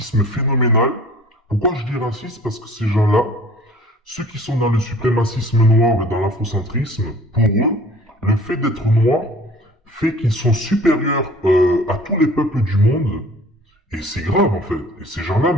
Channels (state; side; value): normal; both; correlation 0.49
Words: phénoménal. Pourquoi je dis raciste? Parce que ces gens-là, ceux qui sont dans le suprémacisme noir et dans l'afrocentrisme, pour eux, le fait d'être noir fait qu'ils sont supérieurs à tous les peuples du monde. Et c'est grave en fait. Et ces gens-là